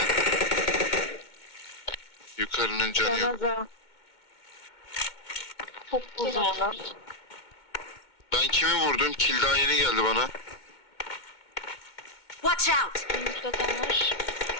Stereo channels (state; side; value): late; right; 2.2 ms